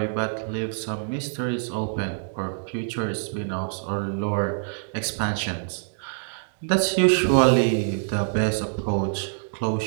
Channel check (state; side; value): silent; left; digital silence